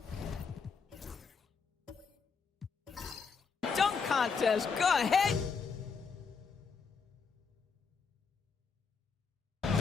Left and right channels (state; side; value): quieter; right; 5.4 dB